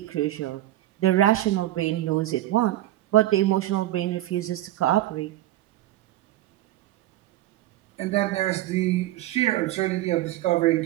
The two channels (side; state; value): left; quieter; 14.8 dB